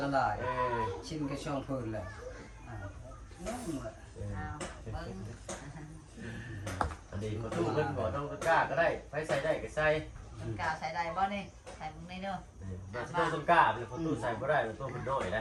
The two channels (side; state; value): both; identical; correlation 1.00